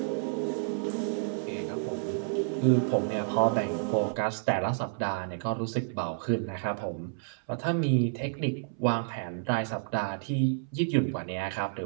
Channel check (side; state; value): left; silent; 58 dB below the other